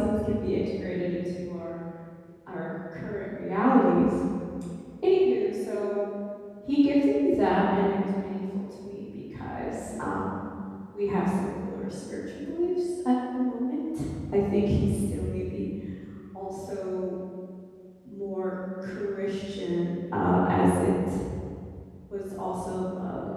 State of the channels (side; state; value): both; identical; correlation 1.00